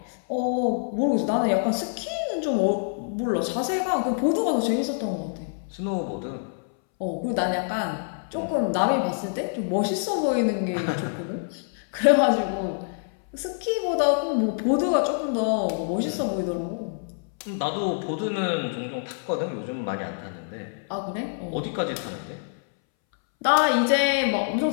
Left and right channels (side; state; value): right; silent; 61 dB below the other